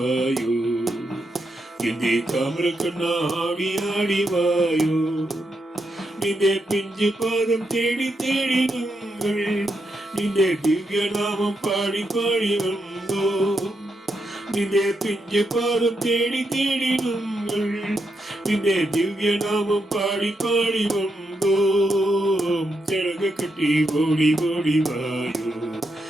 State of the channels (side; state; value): both; normal; correlation 0.82